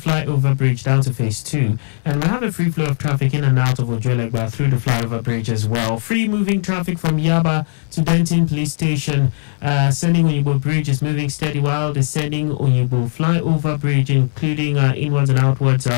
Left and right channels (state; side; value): silent; right; digital silence